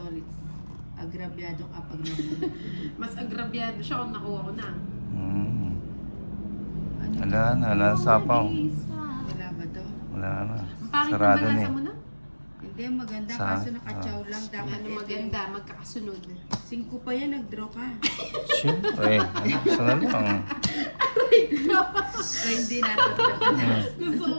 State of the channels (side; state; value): both; inverted; correlation -1.00